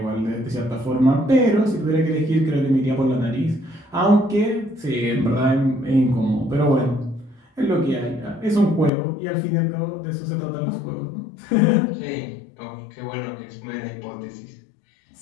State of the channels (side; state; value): right; drops out; at 8.9 s